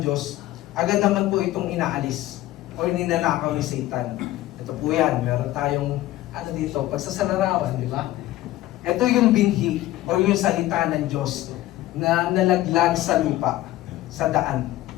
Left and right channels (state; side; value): quieter; right; 15.6 dB